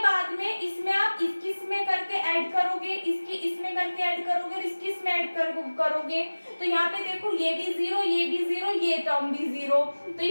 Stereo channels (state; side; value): inverted; both; correlation -1.00